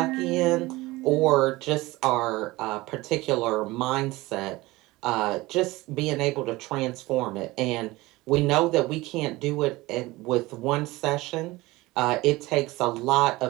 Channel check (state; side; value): quieter; left; 20.2 dB